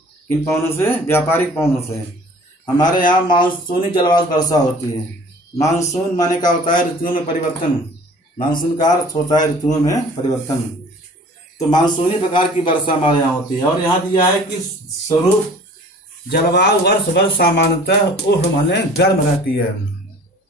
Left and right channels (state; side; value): normal; both; correlation 0.48